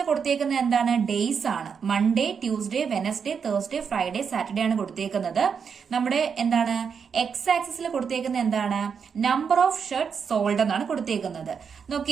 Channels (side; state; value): left; quieter; 6.5 dB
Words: കൊടുത്തേക്കുന്നത് എന്താണ്? ഡേയ്സ് ആണ്. Monday, Tuesday, Wednesday, Thursday, Friday, Saturday ആണ് കൊടുത്തേക്കുന്നത്. നമ്മുടെ എന്താണ് എക്സ് ആക്സിസിൽ കൊടുത്തേക്കുന്നത് എന്താണ്? നമ്പർ ഓഫ് ഷർട്ട് സോൾഡ് എന്നാണ് കൊടുത്തേക്കുന്നത്.